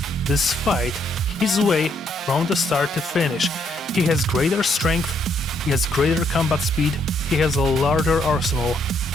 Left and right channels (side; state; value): both; normal; correlation 0.72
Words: this fight his way from the start to finish. He has greater strength, he has greater combat speed, he has a larger arsenal,